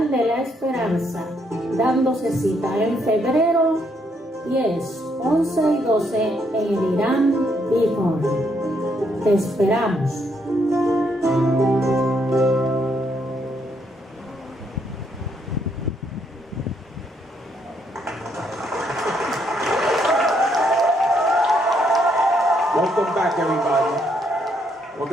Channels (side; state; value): both; normal; correlation 0.73